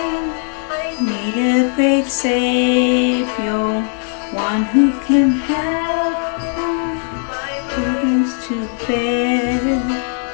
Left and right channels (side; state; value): right; silent; 56 dB below the other